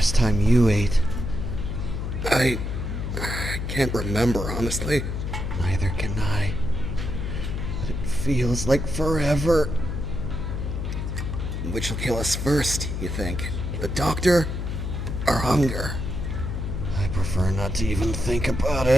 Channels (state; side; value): noise; left; hum, 3 dB below the sound